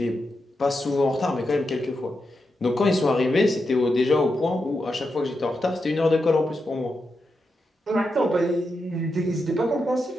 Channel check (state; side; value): normal; both; correlation 0.87